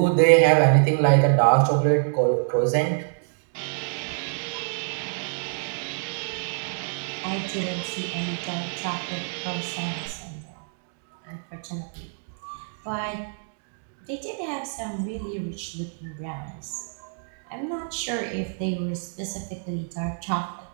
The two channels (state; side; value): silent; left; digital silence